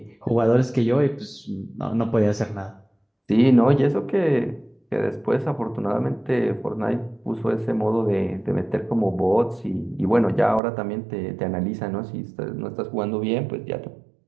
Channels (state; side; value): drops out; left; at 10.6 s